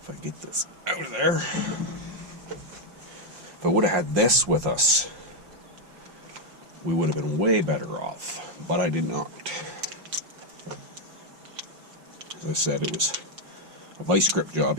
If I get this out of there. If I would have had this with us, we would have been way better off. But I did not. As I said, it was a vice grip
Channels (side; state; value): left; late; 5.6 ms